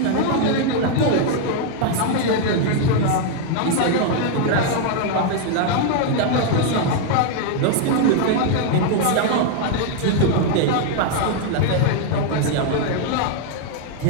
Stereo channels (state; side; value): different; both; correlation 0.00